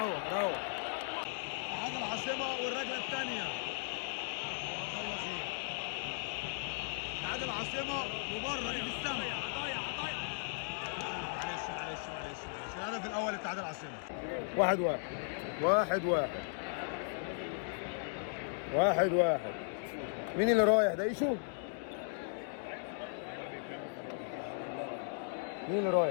روق. هذا العاصمه والرجله الثانيه. الله خير. هذا العاصمه وبره دي في السماء. معلش الهدف الاول لاتحاد العاصمه. 1-1 1-1 1-1. مين اللي رايح ده؟ ايشو؟ مين اللي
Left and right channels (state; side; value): silent; right; digital silence